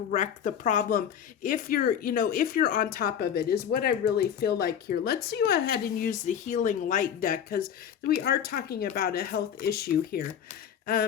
the problem if you're on top of it, is what I really feel like here. Let's go ahead and use the healing light deck, because we are talking about a health issue here.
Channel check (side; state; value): right; quieter; 8.8 dB